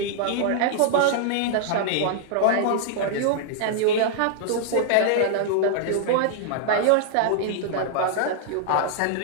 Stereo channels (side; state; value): both; different; correlation -0.01